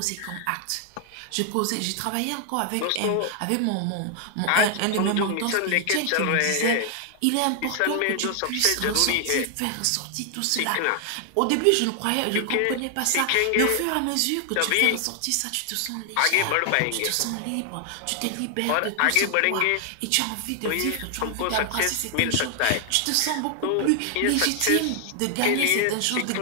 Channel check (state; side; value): different; both; correlation 0.00